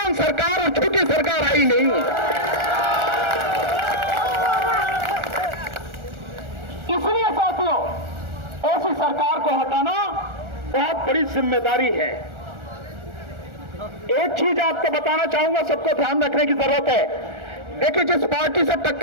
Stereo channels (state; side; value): late; left; 1.4 ms